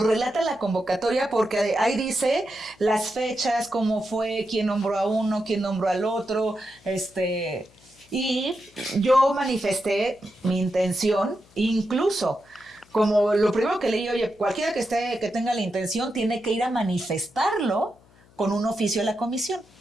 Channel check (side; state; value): left; noise; hum, 29 dB below the sound